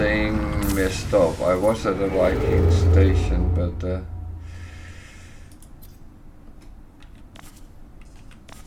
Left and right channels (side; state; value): both; identical; correlation 1.00